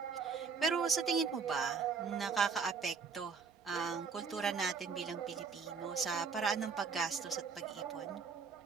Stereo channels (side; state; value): left; quieter; 5.5 dB